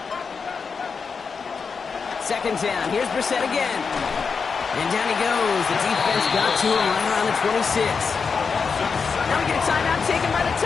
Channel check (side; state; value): right; quieter; 5.4 dB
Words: Second down. Here's Brissett again. And down he goes. The defense got to him right around the 26. Now we get a timeout taken by the